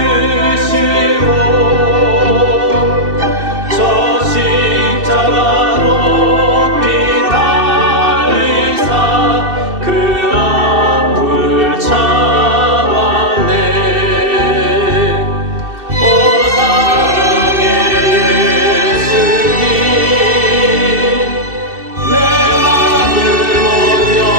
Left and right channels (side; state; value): left; late; 2.7 ms